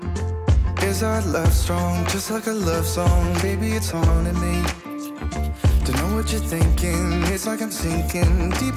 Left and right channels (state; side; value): identical; both; correlation 1.00